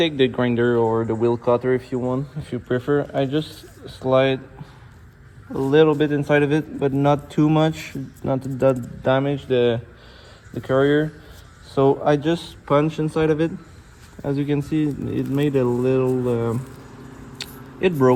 the grinder or the wheel cutter if you want, if you prefer. I just slide a little bit inside of it, but not too much, not to damage the carrier. So I just punch inside of it, as you can see, it made a little it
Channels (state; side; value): identical; both; correlation 1.00